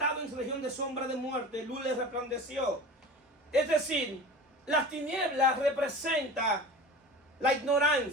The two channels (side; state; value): both; normal; correlation 0.36